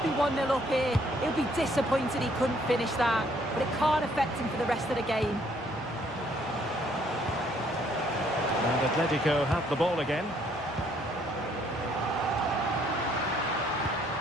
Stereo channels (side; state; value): both; normal; correlation 0.65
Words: be 1-0 up here. He'll be disappointed he couldn't finish that, but it can't affect him for the rest of the game. And Atletico have the ball again.